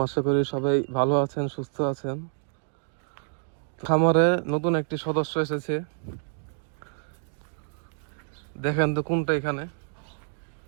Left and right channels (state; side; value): silent; left; digital silence